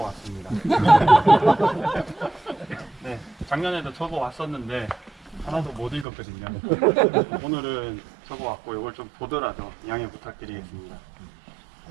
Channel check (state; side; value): drops out; left; at 6.1 s